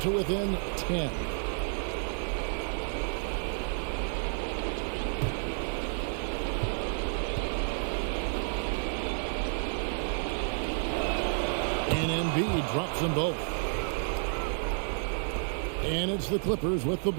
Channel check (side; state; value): left; silent; digital silence